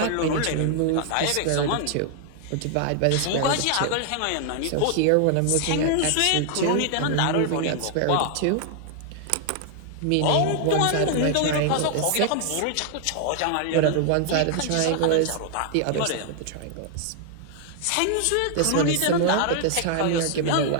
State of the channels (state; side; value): different; both; correlation 0.00